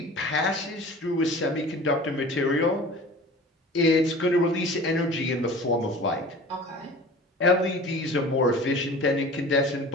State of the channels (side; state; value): both; normal; correlation 0.40